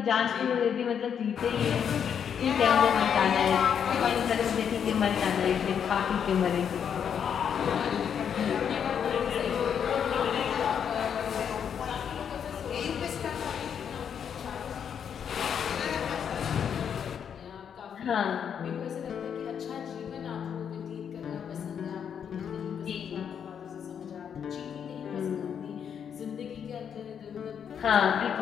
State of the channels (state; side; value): quieter; right; 7.9 dB